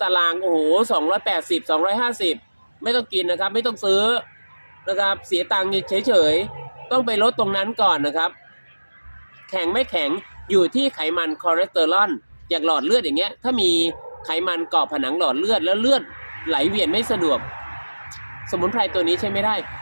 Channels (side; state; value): both; inverted; correlation -1.00